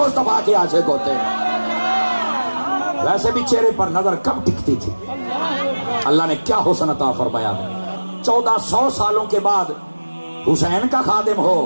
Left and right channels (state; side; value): inverted; both; correlation -1.00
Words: کے عاشق ہوتے ہیں. ویسے بھی چہرے پر نظر کب ٹکتی تھی. اللہ نے کیا حسن عطا فرمایا. 1400 سالوں کے بعد حسین کا خادم ہو،